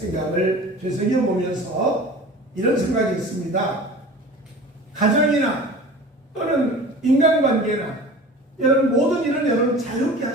되새겨보면서 이런 생각이 있습니다. 가정이나 또는 인간관계나 여러분 모든 일은 여러분 자유롭게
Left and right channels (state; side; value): normal; both; correlation 0.39